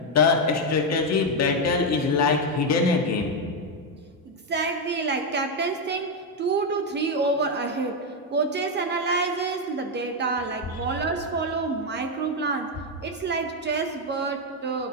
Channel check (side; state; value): both; normal; correlation 0.04